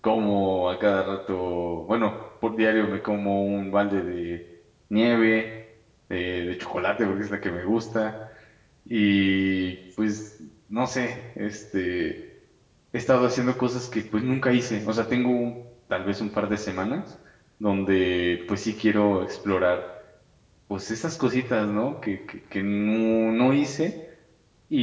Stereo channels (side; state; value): both; identical; correlation 1.00